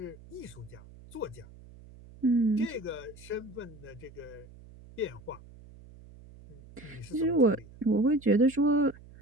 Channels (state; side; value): noise; right; hum, 21 dB below the sound